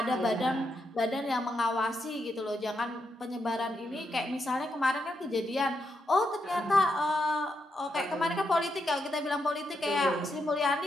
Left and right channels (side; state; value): both; normal; correlation 0.82